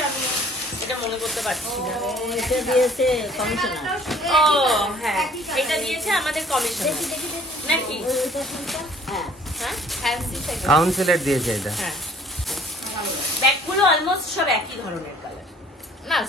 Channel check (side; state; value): both; normal; correlation 0.56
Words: আমি এটা মনে করতে পারছি না। এটা দিয়েছে কমিশনার। ও হ্যাঁ, এটা দিয়েছে আমাদের কমিশনার নাকি? হ্যাঁ হ্যাঁ ফ্যান্সি থেকে কাউন্সিলর দিয়েছে এটা। হ্যাঁ, ব্যাগগুলো অলমোস্ট সব একই ধরনের কালার, না